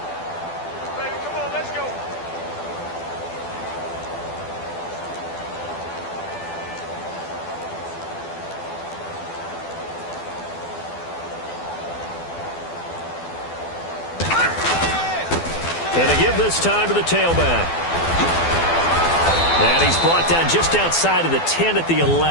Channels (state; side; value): late; right; 12 ms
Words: Baby, come on, let's go. And to give this time to the tailback. And he's brought down just outside of the 10 at the